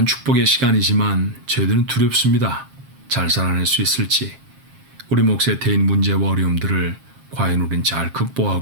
축복의 시간이지만 저희들은 두렵습니다. 잘 살아낼 수 있을지, 우리 몫에 대인 문제와 어려움들을 과연 우린 잘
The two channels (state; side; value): late; left; 7.4 ms